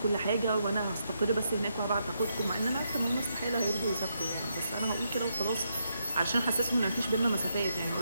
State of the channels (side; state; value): both; inverted; correlation -0.80